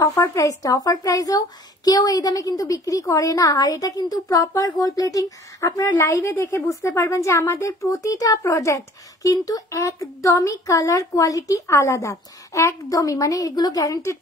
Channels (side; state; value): both; normal; correlation 0.51